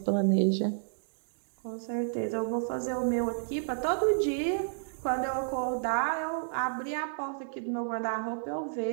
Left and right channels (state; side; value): silent; left; digital silence